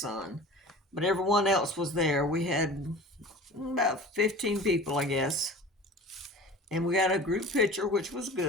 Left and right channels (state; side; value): normal; both; correlation 0.39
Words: But everyone else was there. We had about 15 people, I guess. And we got a group picture, which was